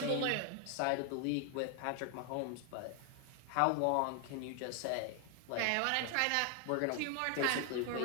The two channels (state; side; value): different; both; correlation 0.00